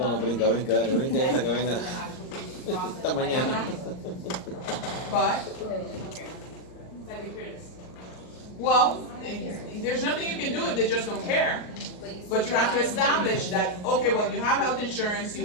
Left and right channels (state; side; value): late; right; 38 ms